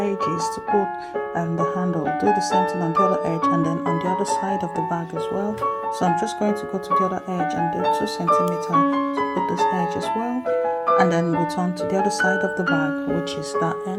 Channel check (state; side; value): identical; both; correlation 1.00